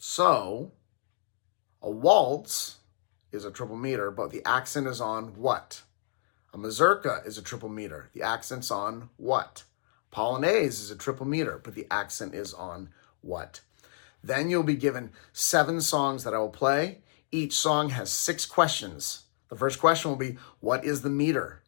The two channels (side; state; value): right; silent; digital silence